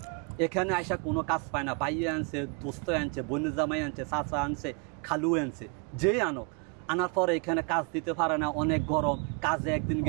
এখানে আইসা কোনো কাজ পায় না। ভাইয়ে আনছে, দোস্ত আনছে, বোনের জামাই আনছে, চাচা আনছে, খালু আনছে, যেই আনক, আনার পরে এখানে কাজ দিতে পারে না, অনেক গরম, কাজে একদিন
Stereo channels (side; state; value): left; quieter; 35.5 dB